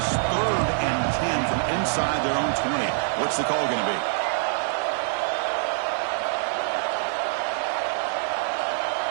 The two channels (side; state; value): left; silent; 62 dB below the other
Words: 3rd and 10 from inside their own 20. What's the call going to be?